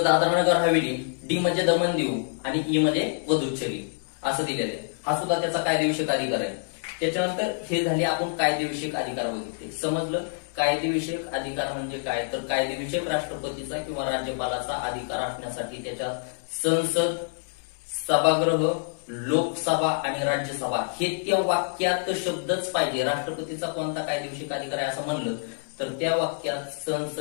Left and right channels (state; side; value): silent; right; digital silence